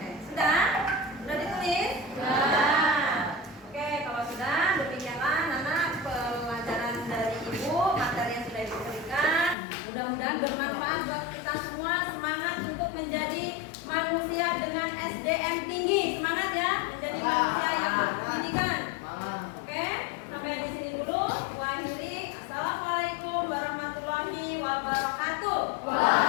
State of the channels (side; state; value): right; drops out; at 9.6 s